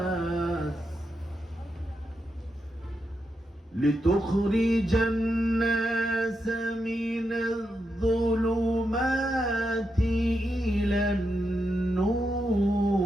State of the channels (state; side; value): normal; both; correlation 0.85